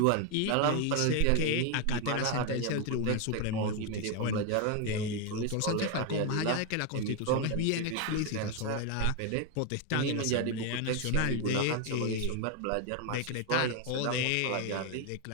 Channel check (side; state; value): both; different; correlation 0.01